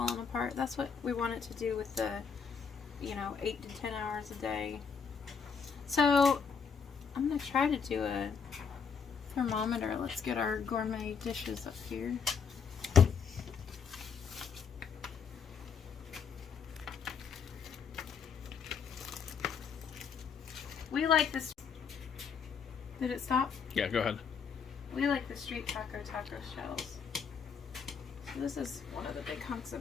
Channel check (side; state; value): right; quieter; 6.3 dB